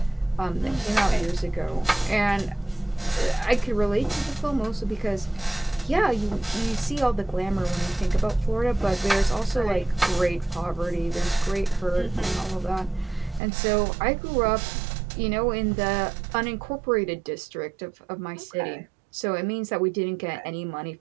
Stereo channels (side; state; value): left; drops out; at 13.4 s